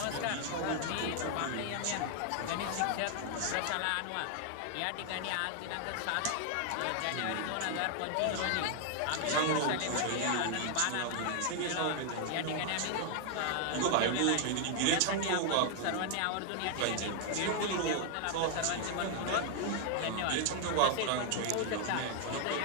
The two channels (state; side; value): different; both; correlation 0.00